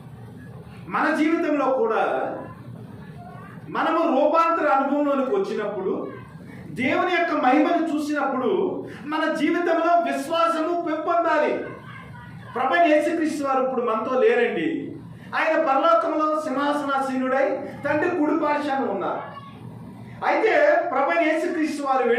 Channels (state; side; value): identical; both; correlation 1.00